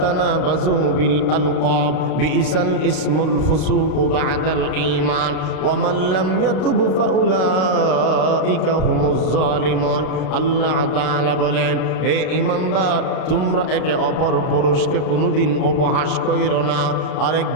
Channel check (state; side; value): late; right; 32 ms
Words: বিল আলকাব বিইসাল ইসমুল ফুসুক বা'দাল ঈমান ওয়া মান লাম ইয়াতুব ফাউলাইকা হুমুজ জালিমুন। আল্লাহ তাআলা বলেন হে ঈমানদার, তোমরা একে অপর পুরুষকে কোনোদিন উপহাস কইরো না,